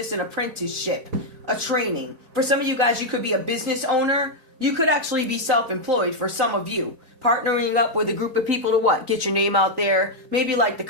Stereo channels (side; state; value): left; late; 3.9 ms